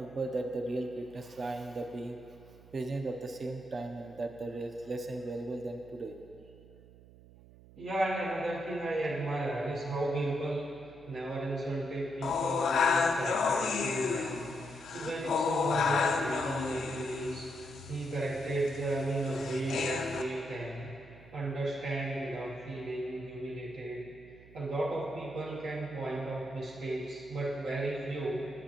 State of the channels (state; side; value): noise; right; hum, 21 dB below the sound